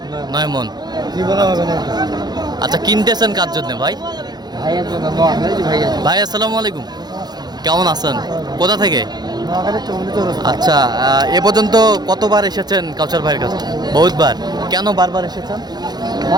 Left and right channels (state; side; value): late; left; 0.20 ms